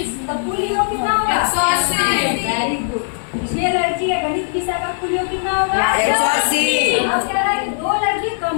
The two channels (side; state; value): right; silent; 60 dB below the other